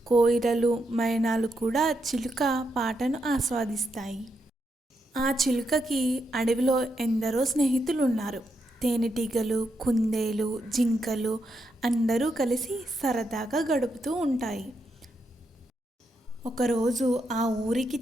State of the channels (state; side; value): normal; both; correlation 0.82